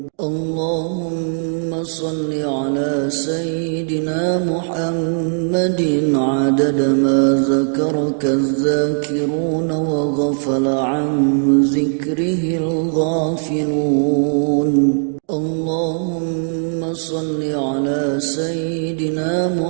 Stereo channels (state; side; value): silent; left; digital silence